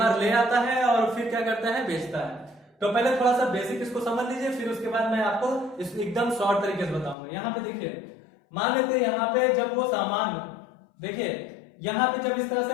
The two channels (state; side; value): drops out; right; at 7.2 s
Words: ले आता है और फिर क्या करता है, बेचता है। तो पहले थोड़ा सा बेसिक इसको समझ लीजिए, फिर उसके बाद मैं आपको एकदम शॉर्ट तरीके से बताऊंगा। यहाँ पे देखिए मान लेते हैं यहाँ पे जब वो सामान, देखिए यहाँ पे जब इस तरह